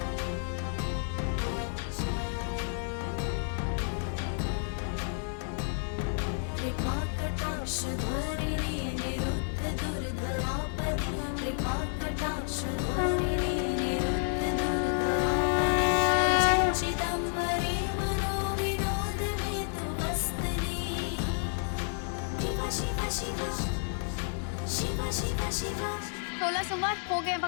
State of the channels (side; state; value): right; silent; 57 dB below the other